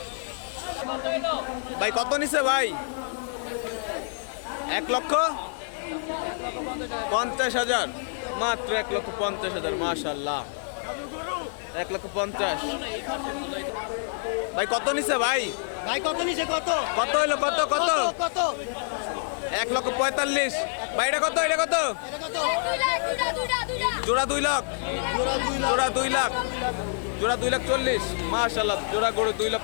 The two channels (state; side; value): silent; right; digital silence